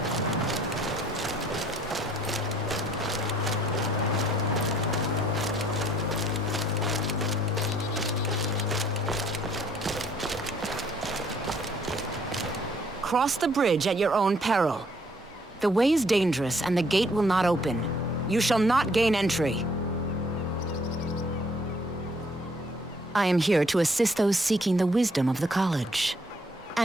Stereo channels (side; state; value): both; normal; correlation 0.63